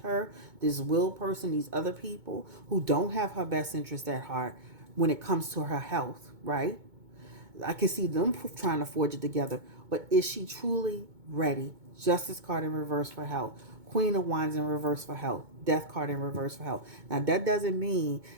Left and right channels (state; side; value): late; left; 2.2 ms